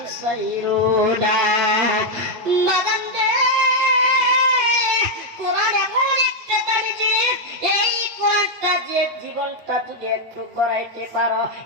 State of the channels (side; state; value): left; late; 8.7 ms